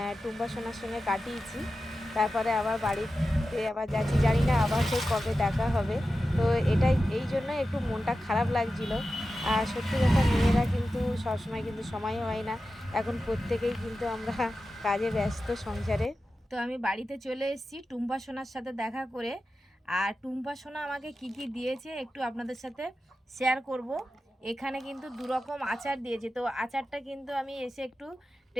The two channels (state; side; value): normal; both; correlation 0.92